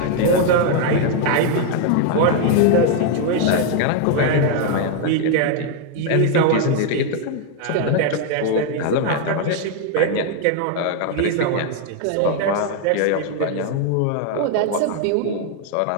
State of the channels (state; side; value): different; both; correlation 0.00